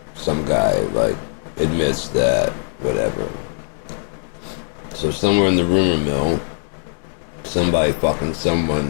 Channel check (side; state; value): right; silent; digital silence